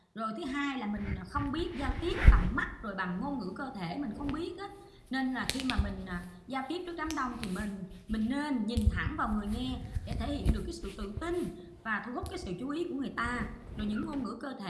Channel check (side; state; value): both; identical; correlation 1.00